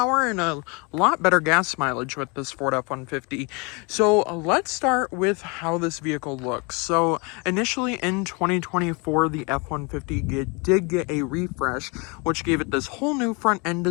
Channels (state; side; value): quieter; right; 30.2 dB